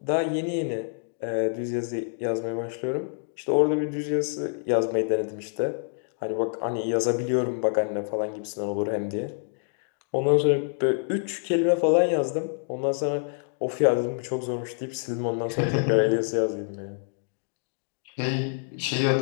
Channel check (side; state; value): right; silent; digital silence